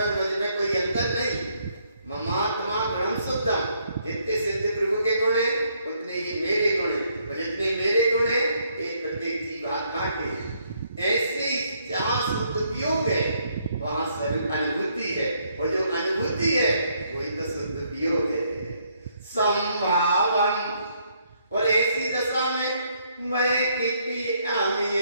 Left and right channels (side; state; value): both; inverted; correlation -0.71